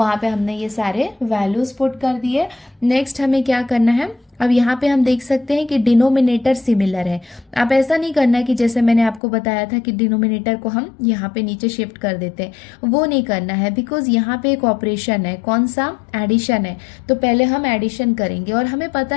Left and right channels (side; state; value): right; drops out; at 9.2 s